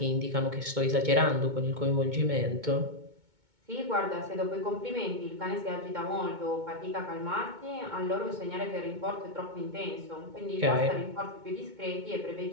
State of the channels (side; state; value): left; late; 2.2 ms